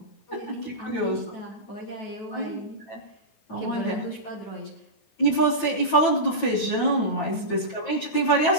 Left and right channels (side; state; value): right; late; 9.1 ms